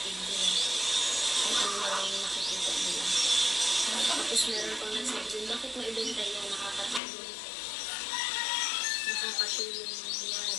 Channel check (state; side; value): drops out; right; at 7.0 s